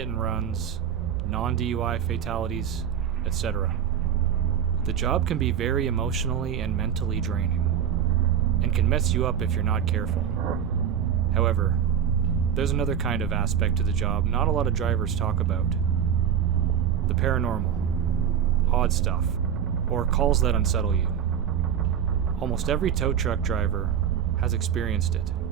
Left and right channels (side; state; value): left; quieter; 8.7 dB